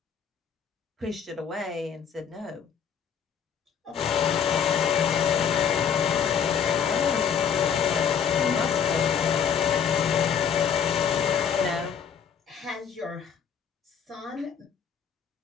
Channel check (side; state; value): right; quieter; 7.5 dB